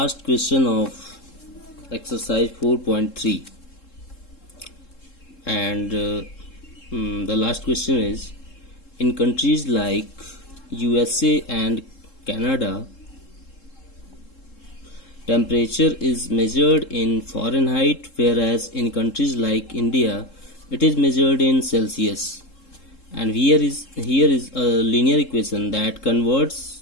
question of exercise 4.3, and the last question is: in countries like USA and Canada, temperature is measured in Fahrenheit, whereas in countries like India, it is measured in Celsius. And here is a linear equation that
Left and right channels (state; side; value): late; right; 3.7 ms